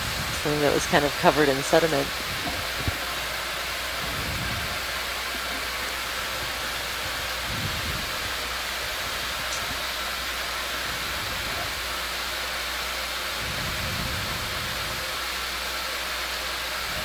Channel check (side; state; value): both; identical; correlation 1.00